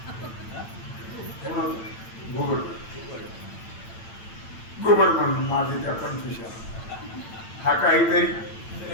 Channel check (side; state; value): right; late; 8.9 ms